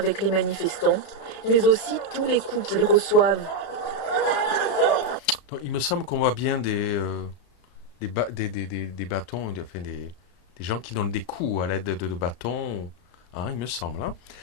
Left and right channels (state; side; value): late; right; 35 ms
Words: les manifestants, mais aussi tous les coups qu'ils reçoivent. Donc, il me semble qu'on voit bien des bâtons, enfin des gens qui donnent des coups à l'aide de bâtons, hein, il me semble. Hein.